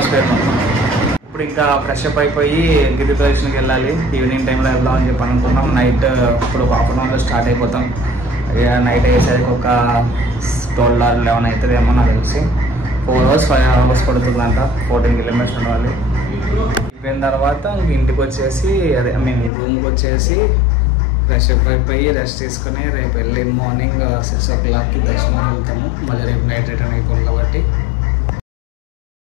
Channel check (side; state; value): right; drops out; at 19.5 s